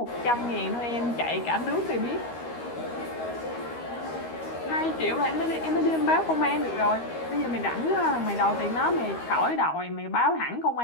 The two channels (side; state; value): right; late; 13 ms